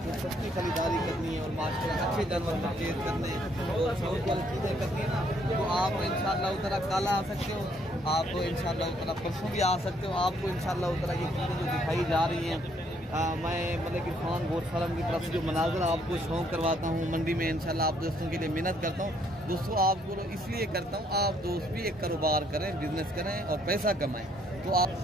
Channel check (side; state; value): both; normal; correlation 0.68